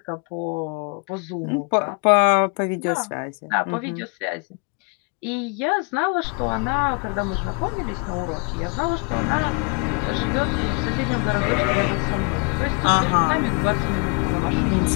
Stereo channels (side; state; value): right; quieter; 34.2 dB